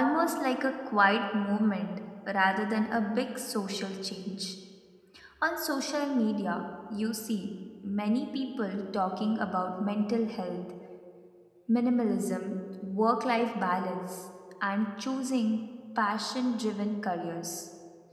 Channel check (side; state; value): both; identical; correlation 1.00